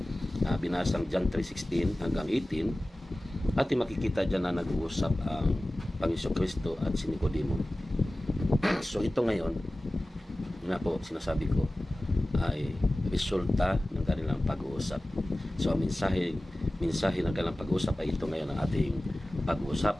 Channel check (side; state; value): both; normal; correlation 0.97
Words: binasang John 3:16 hanggang 18, ating makikita dyan na nag-uusap ang Panginoong Kristo at si Nicodemo. So ito ngayon nga po sinasabi ko ay resulta ng kanilang pag-uusap. So ang mensahe ng kanilang pag-uusap ay ito ngayon ang ating